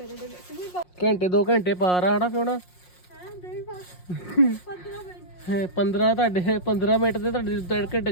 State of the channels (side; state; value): right; late; 5.6 ms